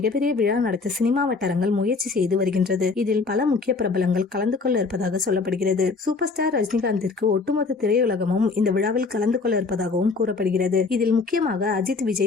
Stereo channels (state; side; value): quieter; right; 4.2 dB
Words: விழா நடத்த சினிமா வட்டாரங்கள் முயற்சி செய்து வருகின்றது. இதில் பல முக்கிய பிரபலங்கள் கலந்து கொள்ள இருப்பதாக சொல்லப்படுகிறது. சூப்பர் ஸ்டார் ரஜினிகாந்திற்கு ஒட்டுமொத்த திரையுலகமும் இந்த விழாவில் கலந்து கொள்ள இருப்பதாகவும் கூறப்படுகிறது. இதில் முக்கியமாக அஜித்,